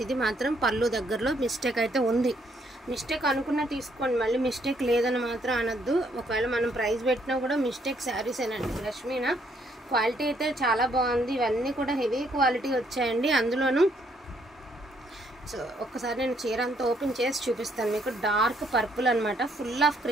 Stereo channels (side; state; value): both; normal; correlation 0.70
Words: ఇది మాత్రం పళ్ళు దగ్గరలో మిస్టేక్ అయితే ఉంది. మిస్టేక్ అనుకున్నా తీసుకోండి, మళ్ళీ మిస్టేక్ లేదని మాత్రం అనొద్దు. ఒకవేళ మనం ప్రైస్ పెట్టినా కూడా మిస్టేక్ శారీసేనండి. బ్రష్ మీనా క్వాలిటీ అయితే చాలా బాగుంది. ఇవన్నీ కూడా హెవీ క్వాలిటీ వచ్చాయండి. అందులోనూ సో ఒక్కసారి నేను చీర అంతా ఓపెన్ చేసి చూపిస్తాను మీకు. డార్క్ పర్పుల్ అనమాట. ఫుల్ ఆఫ్